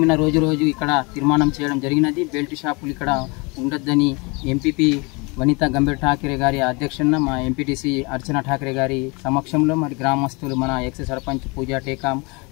రోజు ఇక్కడ తీర్మానం చేయడం జరిగినది. బెల్ట్ షాపులు ఇక్కడ ఉండొద్దని ఎంపీపీ వనితా గంభీర్ ఠాకరే గారి అధ్యక్షన మా ఎంపీటీసీ అర్చన ఠాకరే గారి సమక్షంలో మరి గ్రామస్తులు మన ఎక్స్ సర్పంచ్ పూజా టేకాం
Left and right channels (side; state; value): right; quieter; 28.5 dB